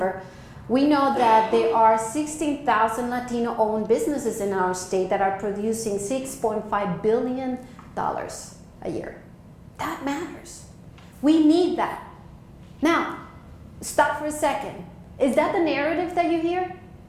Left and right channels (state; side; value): identical; both; correlation 1.00